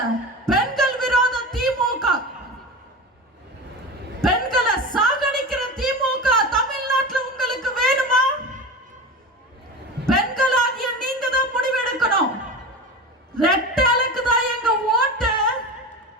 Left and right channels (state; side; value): normal; both; correlation 0.27